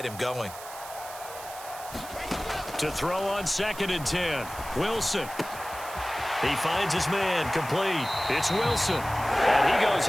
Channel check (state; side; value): noise; right; hiss, 14 dB below the sound